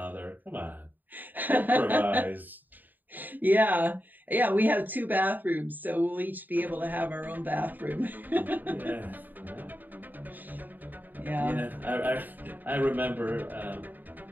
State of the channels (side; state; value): left; late; 0.088 ms